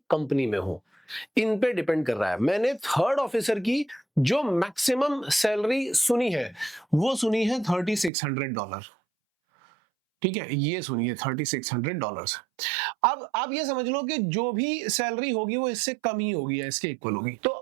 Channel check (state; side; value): drops out; left; at 8.1 s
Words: कंपनी में हो, इन पे डिपेंड कर रहा है। मैंने थर्ड ऑफिसर की जो मैक्सिमम सैलरी सुनी है वो सुनी है $3600। ठीक है, ये सुनिए $3600। अब आप ये समझ लो कि जो भी सैलरी होगी वो इससे कम ही होगी या इसके इक्वल होगी। तो